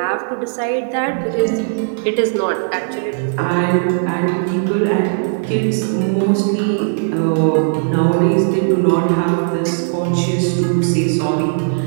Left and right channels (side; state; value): left; silent; 55 dB below the other